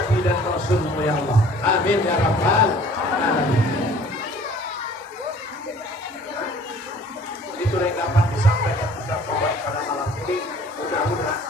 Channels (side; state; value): both; normal; correlation 0.52